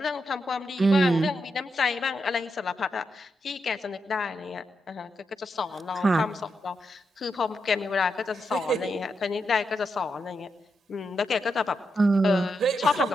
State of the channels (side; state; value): both; normal; correlation 0.84